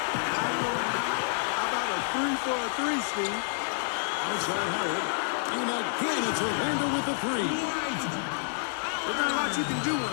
How about a 3 for a 3, Steve? Outside Howard. And again, it's Orlando with the three. There's not a lot you can do when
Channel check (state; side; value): silent; right; digital silence